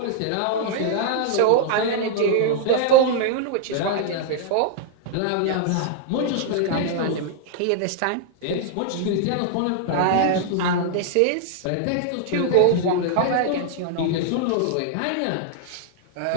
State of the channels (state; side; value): different; both; correlation 0.00